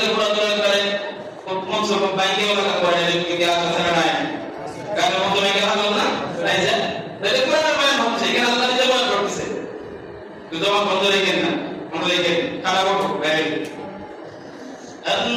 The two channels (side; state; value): both; identical; correlation 1.00